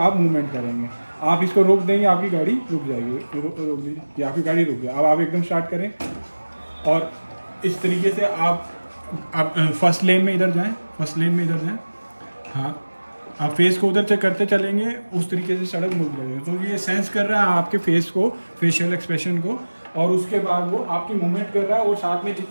मूवमेंट करेंगे। आप इसको रोक देंगे, आपकी गाड़ी रुक जाएगी। रोक दीजिए, ये आपकी गाड़ी रुक गई। अब आप एकदम स्टार्ट करें और इस तरीके से आप फर्स्ट लेन में इधर जाएं, फर्स्ट लेन में इधर जाएं। हाँ, आप फेस को उधर से करते चलेंगे, उस तरीके से सड़क मुड़ जाएगी। तो ये सेंस कर रहा है आपके फेस को, फेशियल एक्सप्रेशन को, और उसके बाद वो आपकी मूवमेंट कर रहा है। और साथ में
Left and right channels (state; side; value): inverted; both; correlation -1.00